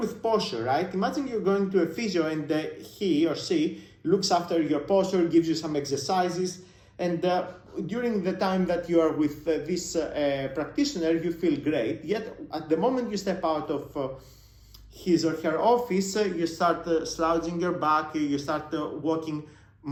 posture, right? Imagine you're going to a physio and he or she looks after your posture, gives you some exercises, and during the time that you are with this practitioner, you feel great. Yet at the moment you step out of his or her office, you start slouching your back, you start walking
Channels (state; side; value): identical; both; correlation 1.00